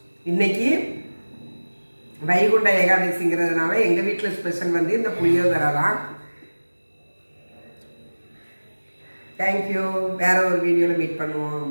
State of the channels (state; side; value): inverted; both; correlation -1.00